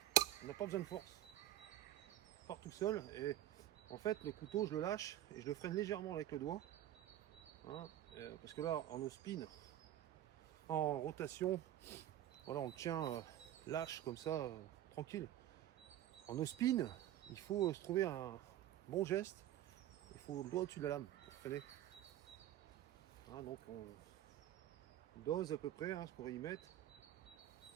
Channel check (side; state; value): left; quieter; 12.8 dB